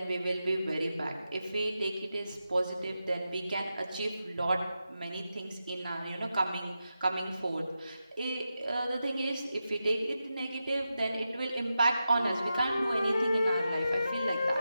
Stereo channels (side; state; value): both; inverted; correlation -0.90